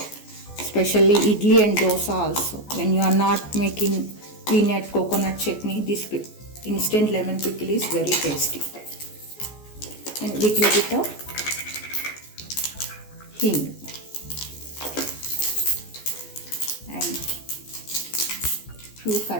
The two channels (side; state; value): right; late; 14 ms